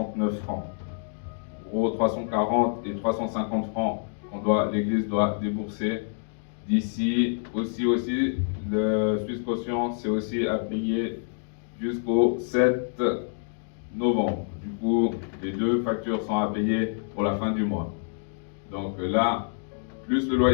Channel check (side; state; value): right; silent; digital silence